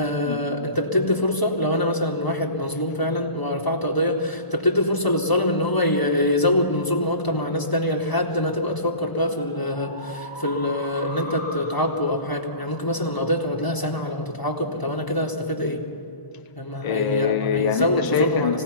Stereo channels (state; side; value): late; right; 1.0 ms